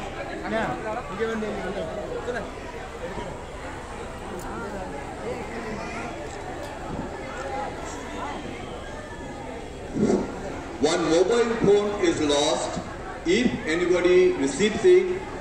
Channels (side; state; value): both; identical; correlation 1.00